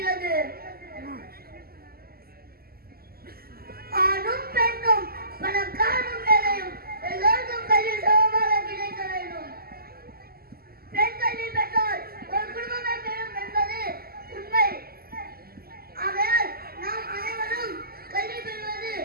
ஆணும் பெண்ணும் பணக்காரனும் வேலையும் எல்லோருக்கும் கல்வி சமமாக கிடைக்க வேண்டும். பெண் கல்வி பெற்றால் ஒரு குடும்பமே பெறும் என்பது உண்மை. ஆகையால் நாம் அனைவரும் கல்வி பெறுவது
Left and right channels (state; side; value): late; left; 0.44 ms